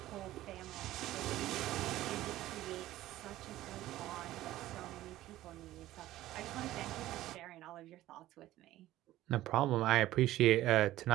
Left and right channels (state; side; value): quieter; left; 15.0 dB